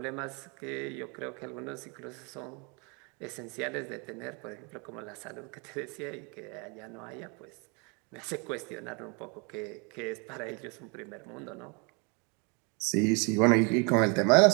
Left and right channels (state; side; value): quieter; left; 32.2 dB